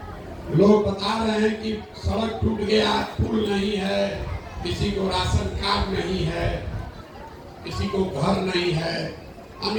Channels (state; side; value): identical; both; correlation 1.00